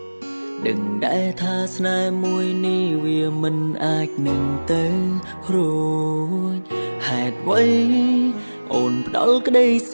ដឹងដែរថាស្នេហ៍មួយនេះវាមិនអាចនឹងទៅរួចហេតុអ្វីអូនផ្ដល់ក្តីស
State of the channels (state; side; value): inverted; both; correlation -1.00